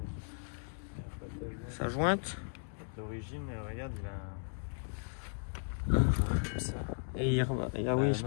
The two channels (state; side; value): silent; right; digital silence